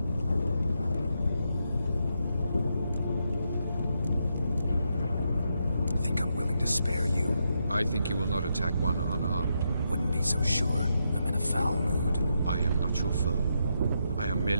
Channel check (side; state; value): both; inverted; correlation -0.82